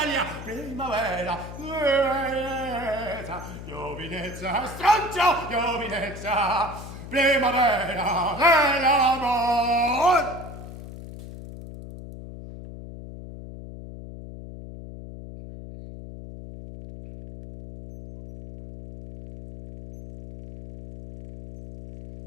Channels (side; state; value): left; noise; hum, 12 dB below the sound